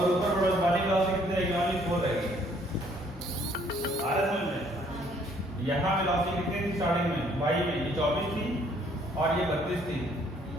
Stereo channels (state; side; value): normal; both; correlation 0.63